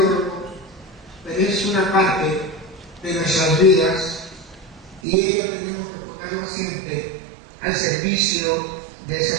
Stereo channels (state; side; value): drops out; left; at 5.0 s